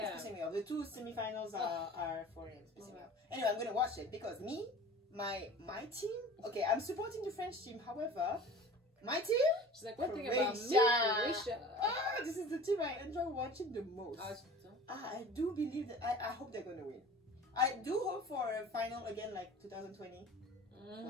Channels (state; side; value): normal; both; correlation 0.41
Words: It's pissing me off. The two semifinals are 4 a.m. It's pissing me off. Anyway, I'm going to watch it because my team, okay, I'm supporting the French team. However, my team, she's like, one thing about me, Croatia. This is the team I enjoy watching the most. I do believe that I hope they're going to win. I do hope for a final again like 2020.